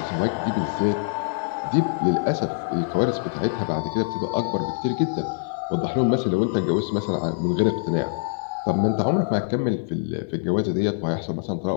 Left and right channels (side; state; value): right; silent; digital silence